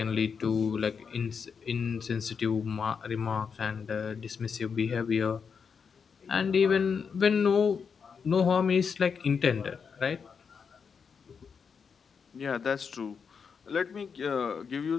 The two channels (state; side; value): quieter; right; 6.1 dB